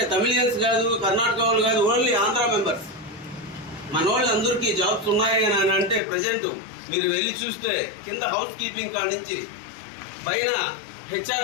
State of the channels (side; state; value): right; drops out; at 6.0 s